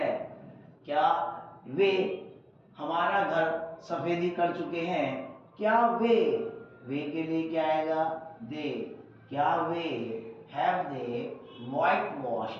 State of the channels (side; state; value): both; identical; correlation 1.00